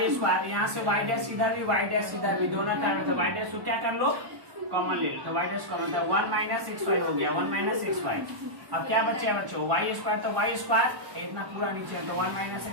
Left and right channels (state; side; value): late; left; 1.1 ms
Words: स्क्वायर, यहाँ से y डैश इधर भी y डैश इधर भी, दोनों तरफ तो y डैश को क्या कर लो कॉमन ले लो, तो y डैश कॉमन, तो 1 माइनस xy हो गया, 1 माइनस xy। अब क्या बचे बच्चों y स्क्वायर तो y स्क्वायर इतना पूरा नीचे तो 1 माइनस